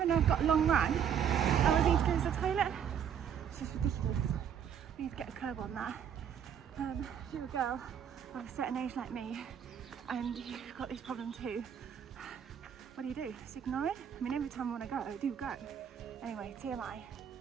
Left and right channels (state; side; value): quieter; left; 8.4 dB